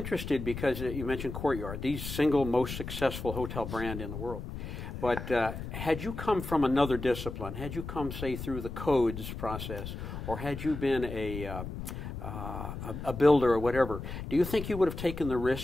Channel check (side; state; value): left; noise; rumble, 8 dB below the sound